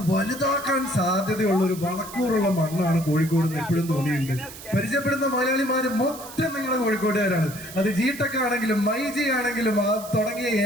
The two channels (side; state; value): right; noise; hiss, 15 dB below the sound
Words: വലുതാക്കാൻ സാധ്യതയുള്ള ഒരു വളക്കൂറുള്ള മണ്ണാണ് കോഴിക്കോട് എന്ന് എപ്പോഴും തോന്നിയിട്ടുണ്ട്. പരിചയപ്പെടുന്ന മലയാളിമാര് മൊത്തം നിങ്ങളുടെ കോഴിക്കോട്ടുകാരാണ്. അത് ജിടെക് ആണെങ്കിലും മൈജി ആണെങ്കിലും തുടങ്ങിയ